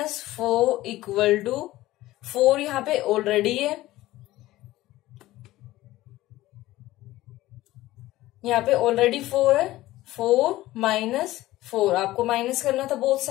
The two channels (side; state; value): right; quieter; 16.6 dB